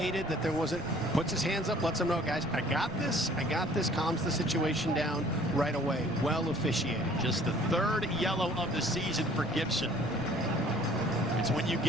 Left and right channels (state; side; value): noise; right; rumble, 19 dB below the sound